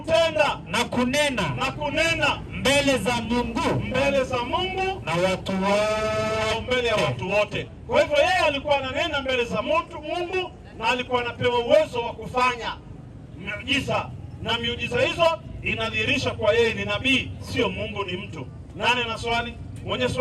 na kunena mbele za Mungu na watu wote, mbele ya watu wote. Kwa hivyo yeye alikuwa ananena mbele za Mungu na alikuwa anapewa uwezo wa kufanya miujiza, na miujiza hizo inadhihirisha kwa yeye ni nabii, sio Mungu, ni mtu. Nani ana swali? Mwenye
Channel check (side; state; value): both; identical; correlation 1.00